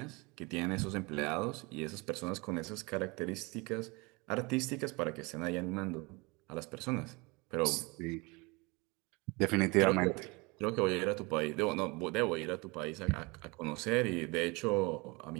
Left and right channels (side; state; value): left; quieter; 26.7 dB